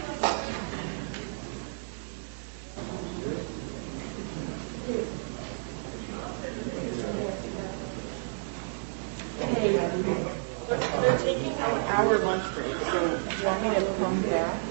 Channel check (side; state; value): left; silent; digital silence